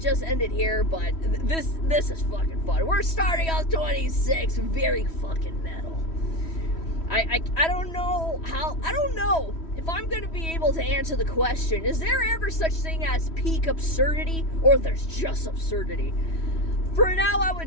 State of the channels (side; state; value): right; late; 3.1 ms